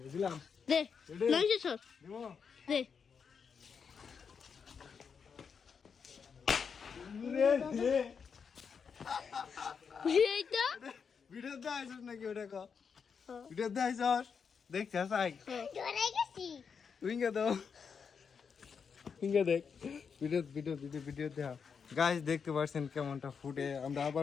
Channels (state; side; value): quieter; right; 6.3 dB